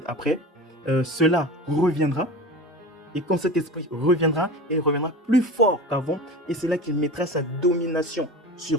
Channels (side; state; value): both; normal; correlation 0.32